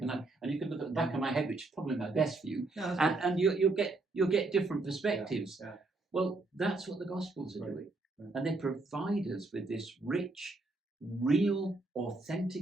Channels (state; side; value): quieter; left; 3.2 dB